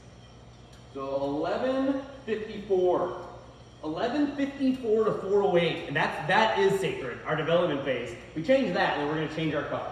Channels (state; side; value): identical; both; correlation 1.00